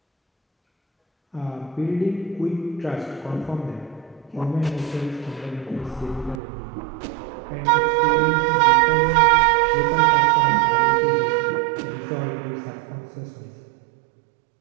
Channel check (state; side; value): drops out; left; at 6.4 s